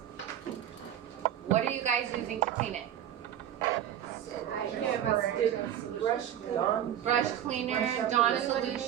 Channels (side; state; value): left; quieter; 10.7 dB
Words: What are you guys using to clean it? Brush cleaner, Dawn